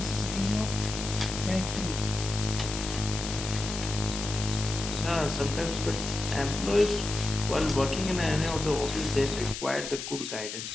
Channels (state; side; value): noise; left; hiss, 7 dB below the sound